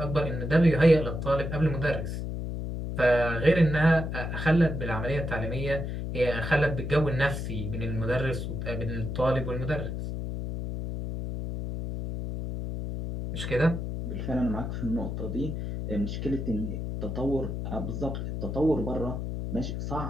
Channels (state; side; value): noise; left; hum, 4 dB below the sound